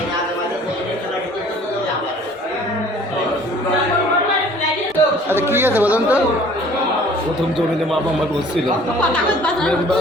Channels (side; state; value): both; normal; correlation 0.52